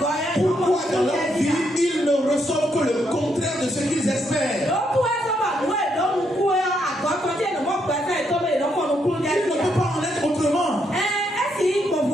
Pourquoi dans leur vie ils ne reçoivent que le contraire de ce qu'ils espèrent. Il ne peut pas en être autrement.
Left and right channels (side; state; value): both; normal; correlation 0.76